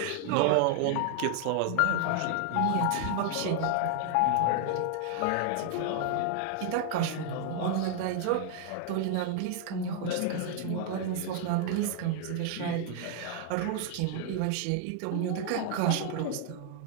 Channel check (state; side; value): different; both; correlation 0.00